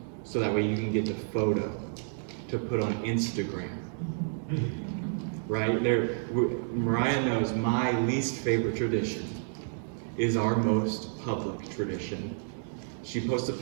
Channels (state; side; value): silent; left; digital silence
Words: so that way you can get the photo to put on Instagram. Right? Mariah knows my least favorite tradition is our most public tradition. She posts a